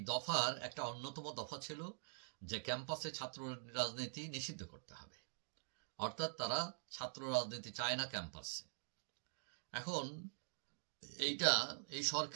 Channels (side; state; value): left; silent; digital silence